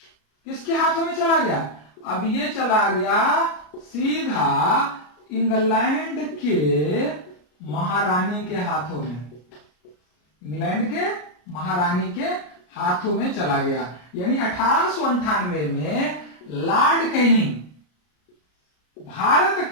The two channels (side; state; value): right; late; 33 ms